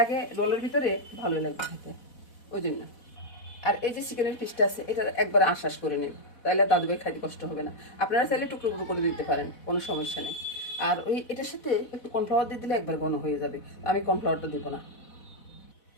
রোলের ভিতরে, ভালোই লাগবে খেতে, ওই জন্য। আর এই যে চিকেনের পিসটা আছে, এটা একবার আশ্বাস করে নেব, তাহলে দাদুভাই খাইতে কষ্ট হবে না। আপনারা চাইলে টুকরো টুকরো করে দিতে পারেন, কোনো সমস্যা নেই। আর ওই এটার সাথে একটু কর্নফ্লাওয়ার দিয়ে দিলে একবার ঘন হয়ে যাবে, আমি কর্নফ্লাওয়ারটা দেবো না।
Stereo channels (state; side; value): late; right; 4.1 ms